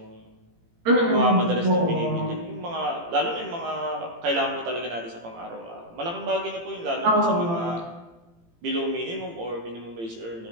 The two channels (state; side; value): late; left; 18 ms